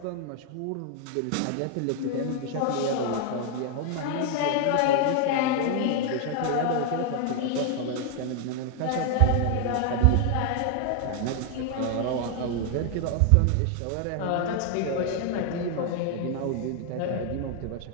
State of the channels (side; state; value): both; different; correlation 0.00